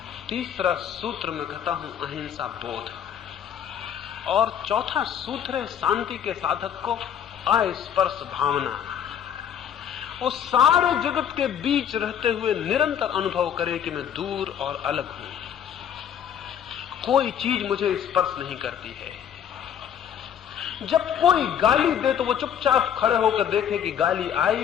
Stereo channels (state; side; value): quieter; right; 9.0 dB